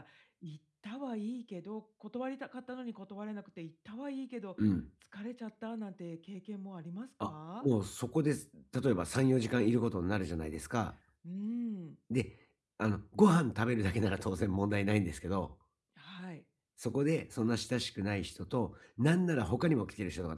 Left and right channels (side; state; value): both; identical; correlation 1.00